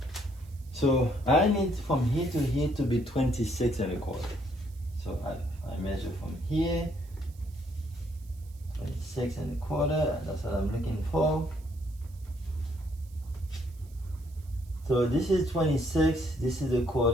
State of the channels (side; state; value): right; noise; hiss, 27 dB below the sound